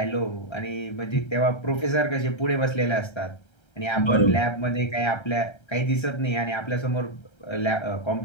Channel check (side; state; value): right; late; 1.3 ms